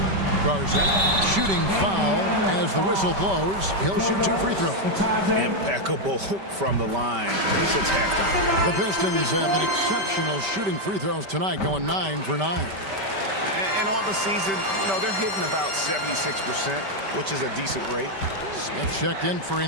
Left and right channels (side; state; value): left; late; 5.2 ms